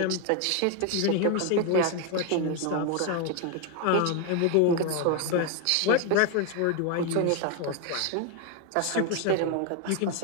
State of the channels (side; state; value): both; different; correlation 0.01